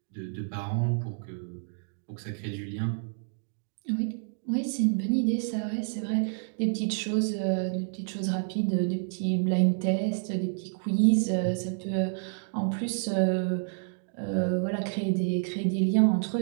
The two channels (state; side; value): silent; left; digital silence